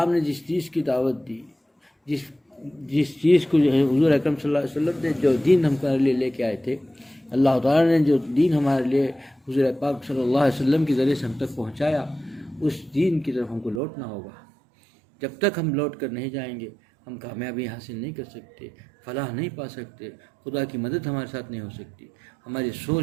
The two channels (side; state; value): left; drops out; at 13.8 s